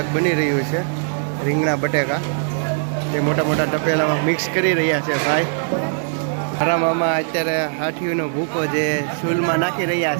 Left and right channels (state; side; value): silent; left; digital silence